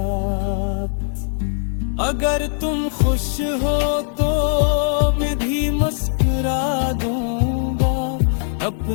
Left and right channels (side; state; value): right; silent; digital silence